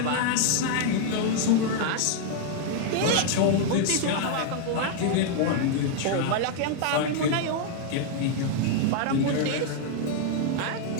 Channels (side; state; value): both; different; correlation 0.00